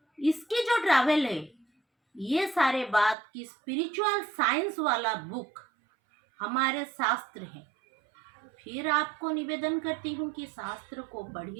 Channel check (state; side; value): drops out; left; at 3.2 s